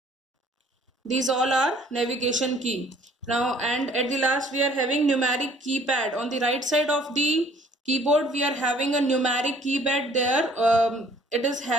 These all are navigation key. Now, and at the last we are having numeric keypad. On the right side of the keyboard we are having a numeric keypad there. It is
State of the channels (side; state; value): both; normal; correlation 0.57